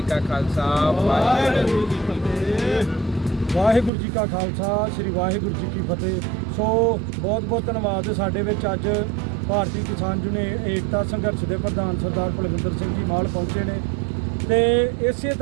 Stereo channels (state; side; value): drops out; left; at 3.9 s